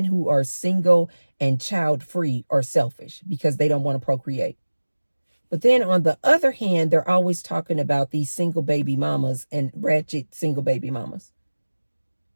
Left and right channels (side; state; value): both; inverted; correlation -1.00